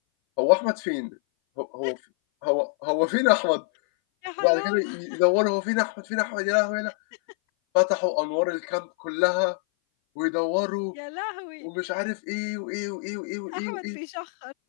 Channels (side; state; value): right; silent; 58 dB below the other